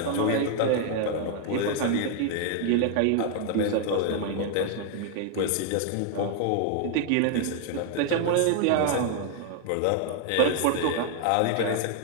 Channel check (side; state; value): both; different; correlation 0.00